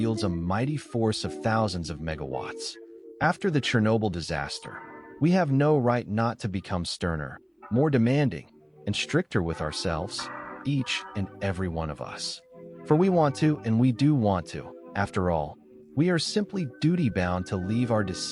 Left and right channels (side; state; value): both; identical; correlation 1.00